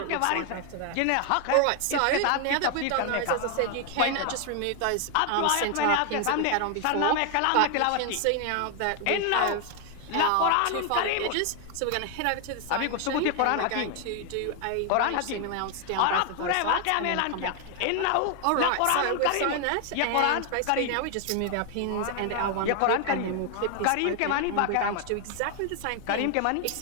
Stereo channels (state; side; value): different; both; correlation 0.00